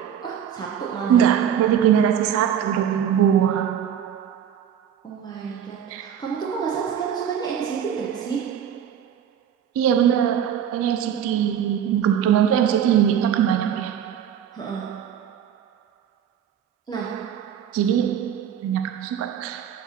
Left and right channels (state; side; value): quieter; left; 9.1 dB